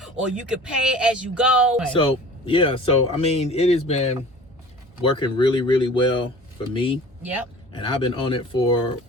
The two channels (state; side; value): normal; both; correlation 0.43